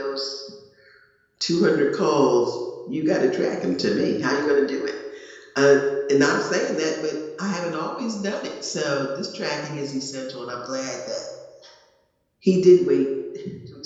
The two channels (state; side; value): identical; both; correlation 1.00